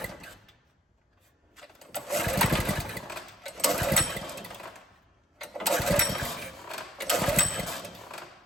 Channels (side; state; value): both; normal; correlation 0.63